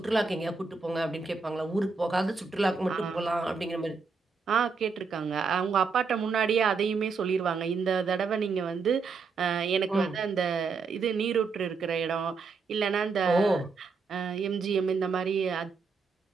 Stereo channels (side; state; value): left; quieter; 4.9 dB